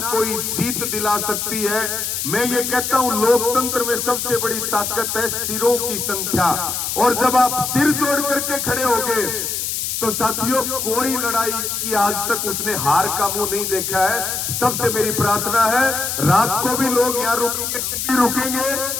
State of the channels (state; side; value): noise; left; hiss, 2 dB below the sound